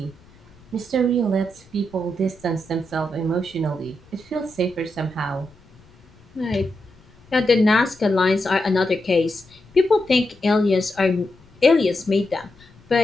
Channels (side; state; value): left; noise; rumble, 27 dB below the sound